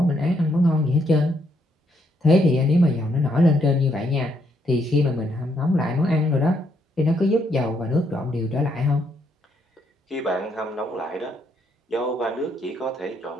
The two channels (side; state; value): both; normal; correlation 0.74